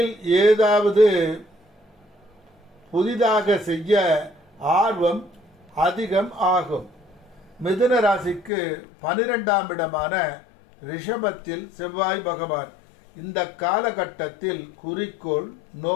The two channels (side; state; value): right; drops out; at 8.5 s